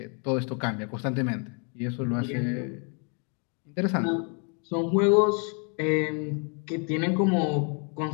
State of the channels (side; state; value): right; quieter; 38.0 dB